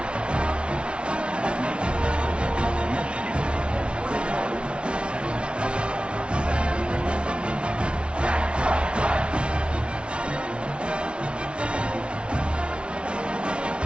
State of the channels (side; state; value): left; late; 0.058 ms